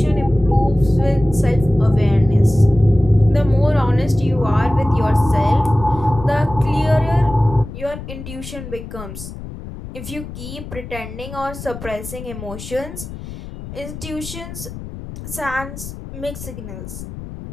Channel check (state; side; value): noise; left; rumble, 12 dB below the sound